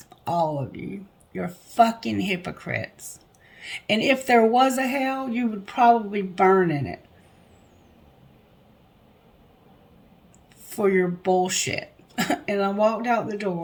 all of you. You're fucking hypocrites. And if there was a hell, you would probably burn in it for your bullshit. And I walked out the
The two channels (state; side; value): identical; both; correlation 1.00